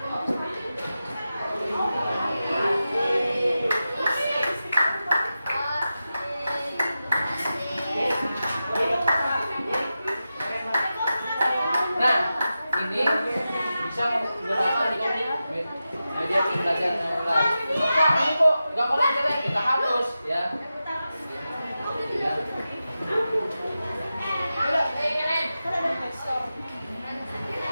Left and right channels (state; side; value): inverted; both; correlation -0.92